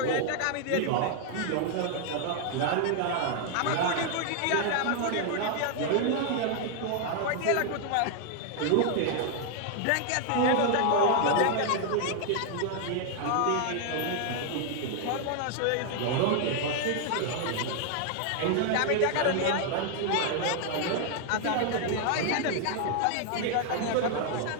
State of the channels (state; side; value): different; both; correlation 0.00